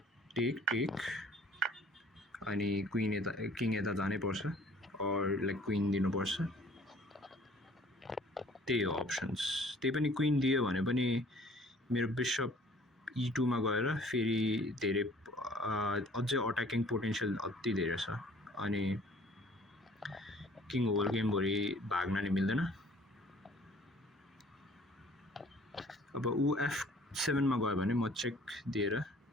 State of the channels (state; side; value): normal; both; correlation 0.53